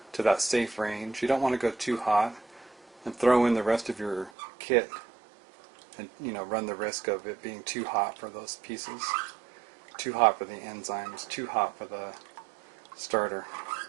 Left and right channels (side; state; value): left; drops out; at 4.3 s